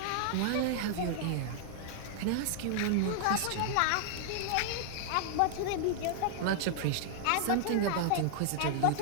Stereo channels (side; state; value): both; different; correlation -0.01